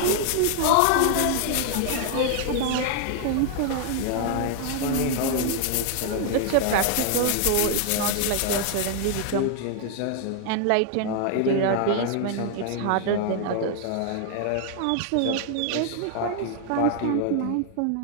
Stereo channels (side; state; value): both; different; correlation 0.00